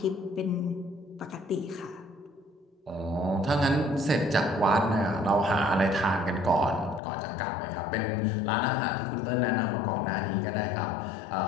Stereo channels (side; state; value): right; drops out; at 7.0 s